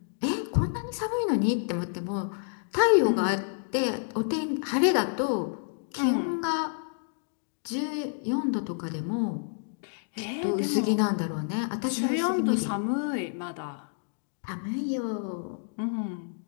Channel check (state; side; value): silent; right; digital silence